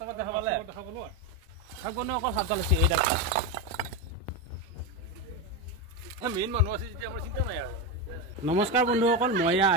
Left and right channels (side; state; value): both; normal; correlation 0.13